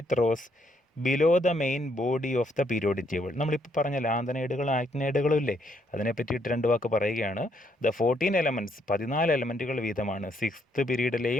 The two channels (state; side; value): normal; both; correlation 0.72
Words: rows below the main body of the periodic table. നമ്മളിപ്പോൾ പറഞ്ഞ ലാന്തനൈഡുകളും ആക്ടിനൈഡുകളും ഇല്ലേ, അതിനെ പറ്റിയിട്ട് 2 വാക്ക് പറയുകയാണ്. The 14 elements 14 എലമെൻറ്റുകൾ വീതമാണ് 6th